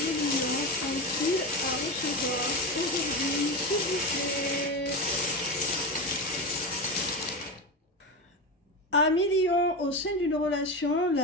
lions ont-ils à recevoir aujourd'hui, s'il vous plaît? Amis lions, au sein d'une relation,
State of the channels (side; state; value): both; normal; correlation 0.19